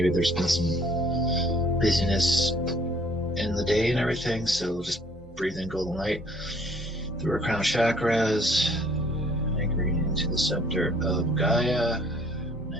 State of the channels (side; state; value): both; normal; correlation 0.58